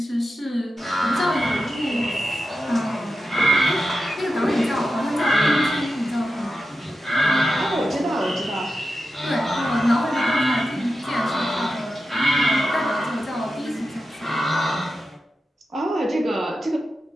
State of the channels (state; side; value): normal; both; correlation 0.90